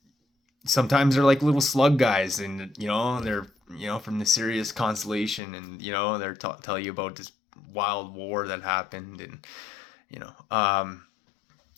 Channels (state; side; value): drops out; right; at 5.4 s